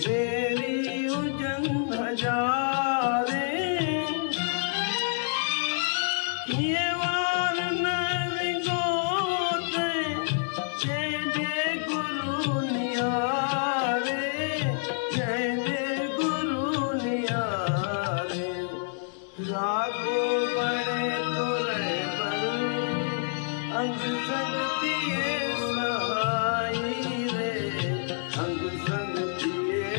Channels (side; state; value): right; silent; 59 dB below the other